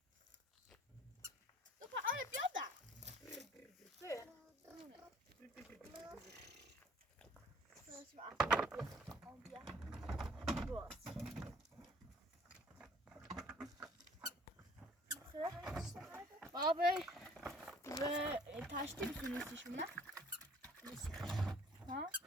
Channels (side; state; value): both; normal; correlation 0.56